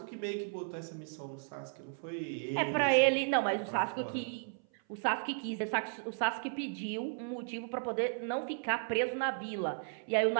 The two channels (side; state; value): left; silent; 55 dB below the other